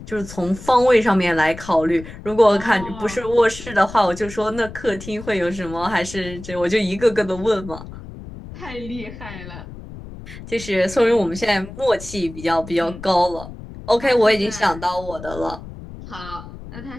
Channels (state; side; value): noise; left; rumble, 14 dB below the sound